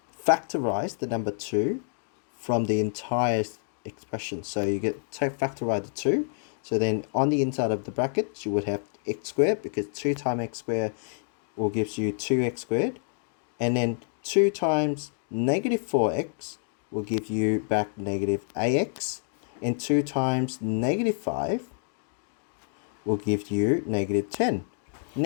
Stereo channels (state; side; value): silent; right; digital silence